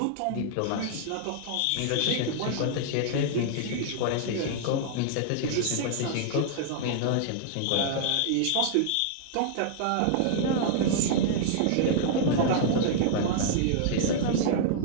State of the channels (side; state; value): both; different; correlation -0.01